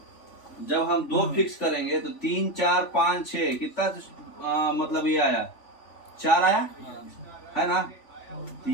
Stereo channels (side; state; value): right; late; 3.5 ms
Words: करेंगे तो 3 4 5 6 कितना मतलब ये आया, 4 आया है ना। तो